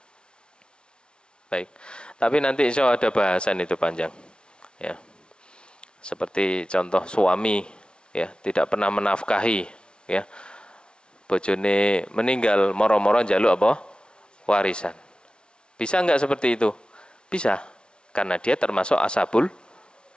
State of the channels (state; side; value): late; right; 0.056 ms